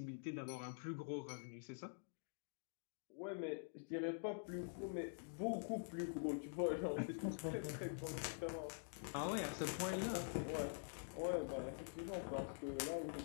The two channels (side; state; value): right; silent; digital silence